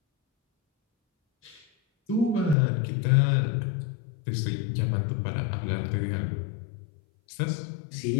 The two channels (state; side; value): drops out; right; at 2.6 s